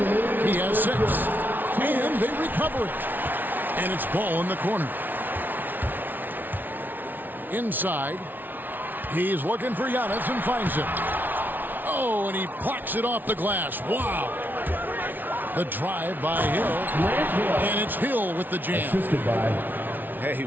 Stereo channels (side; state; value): left; late; 0.088 ms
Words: has 6. And they recover it. And it's ball in the corner. Inside. He's looking for Giannis and finds it. Oh, and he plucks it off the glass. Wow. The drive by Hill. And it's Hill with the jam. Assisted by. Hey,